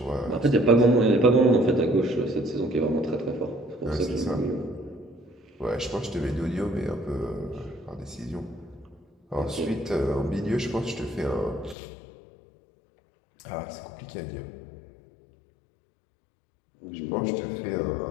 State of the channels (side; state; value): right; drops out; at 11.8 s